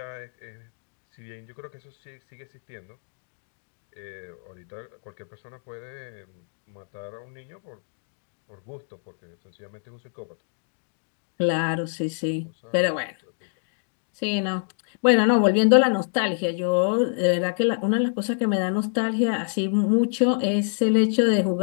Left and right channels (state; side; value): silent; right; digital silence